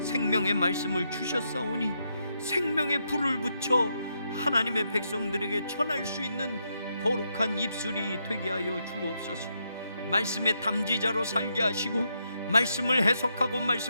생명의 말씀을 주셨사오니 생명의 불을 붙여 하나님의 백성들에게 전할 수 있는 거룩한 입술이 되게 하여 주옵소서. 말씀의 담지자로 살게 하시고 말씀을 해석하고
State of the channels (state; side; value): inverted; both; correlation -0.80